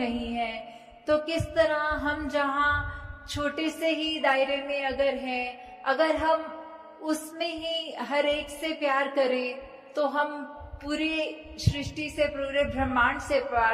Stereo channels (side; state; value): both; identical; correlation 1.00